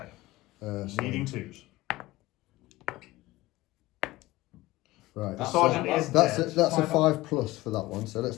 So- Needing 2s. Right. The That's sergeant a- is That's a, dead. that's a 5 5 plus for that one, so let's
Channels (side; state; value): right; quieter; 18.8 dB